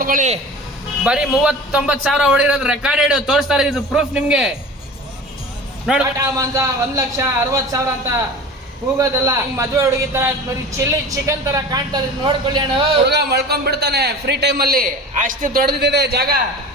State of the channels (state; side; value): normal; both; correlation 0.37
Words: ಬರೀ 39,000 ಹೊಡಿರೋದು ರೆಕಾರ್ಡೆಡ್ ತೋರಿಸ್ತಾರೆ. ಇದು ಪ್ರೂಫ್ ನಿಮ್ಗೆ. ನೋಡಿ, ಟಾಟಾ ಮಾಂಜಾ 1,60,000 ಅಂತ ಕೂಗೋದಲ್ಲ. ಮದುವೆ ಹುಡುಗಿ ತರ ಬರೀ ಚಿಲ್ಲಿ ಚಿಕನ್ ತರ ಕಾಣ್ತಾರೆ. ನೋಡ್ಕೊಳ್ಳಿ ಅಣ್ಣ, ಹುಡುಗ ಮಳ್ಕೊಂಡ್ ಬಿಡ್ತಾನೆ ಫ್ರೀ ಟೈಮ್ ಅಲ್ಲಿ. ಅಷ್ಟು ದೊಡ್ಡದಿದೆ ಜಾಗ.